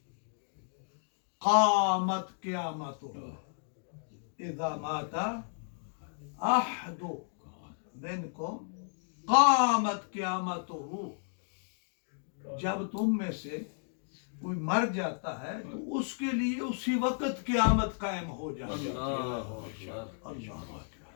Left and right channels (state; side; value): silent; right; digital silence